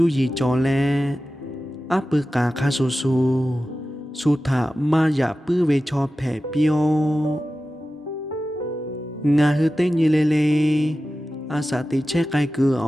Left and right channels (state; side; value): normal; both; correlation 0.94